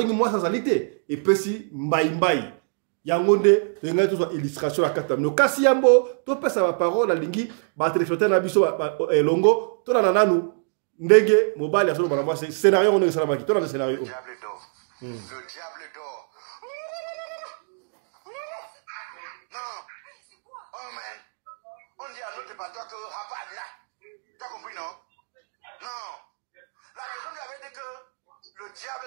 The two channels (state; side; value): silent; left; 62 dB below the other